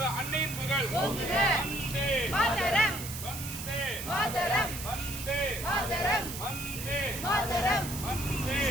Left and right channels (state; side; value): noise; right; hiss, 8 dB below the sound